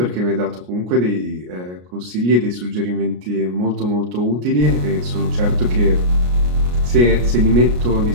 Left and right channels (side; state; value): left; late; 33 ms